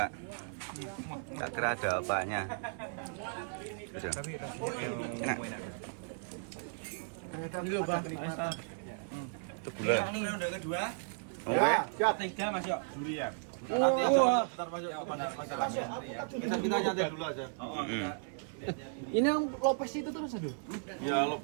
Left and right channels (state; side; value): silent; left; 54 dB below the other